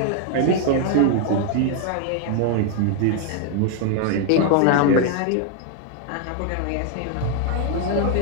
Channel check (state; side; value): different; both; correlation 0.00